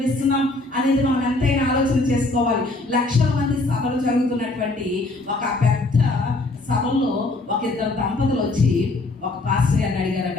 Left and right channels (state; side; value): quieter; right; 3.0 dB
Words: అనేది మనం ఎంతైనా ఆలోచన చేసుకోవాలి. లక్షల మంది సభలు జరుగుతున్నటువంటి ఒక పెద్ద సభల్లో ఒక ఇద్దరు దంపతులు వచ్చి ఒక పాస్టర్ గారిని అడిగారట.